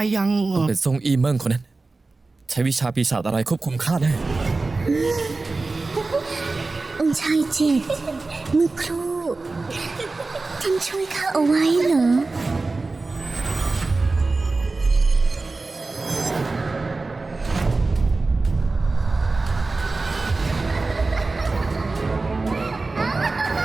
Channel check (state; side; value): quieter; left; 3.6 dB